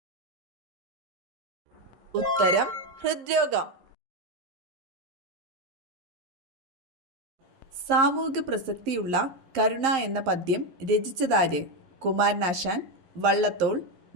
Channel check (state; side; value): late; left; 11 ms